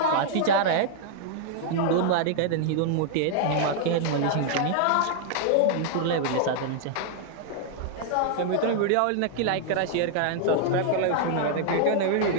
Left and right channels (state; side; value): different; both; correlation -0.01